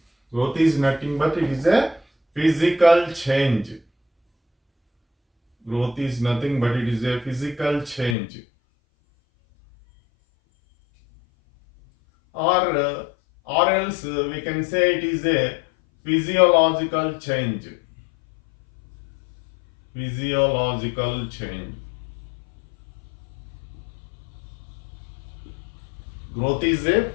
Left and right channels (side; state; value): right; drops out; at 8.2 s